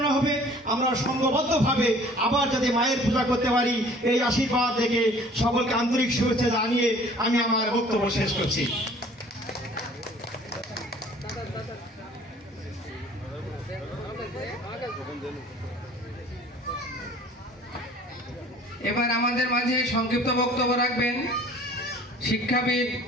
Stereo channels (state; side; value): normal; both; correlation 0.51